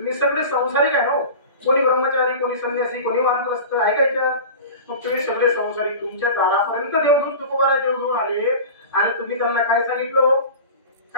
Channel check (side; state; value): both; inverted; correlation -0.34